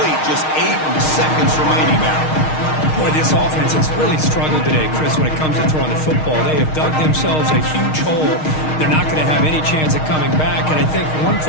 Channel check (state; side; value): late; right; 6.4 ms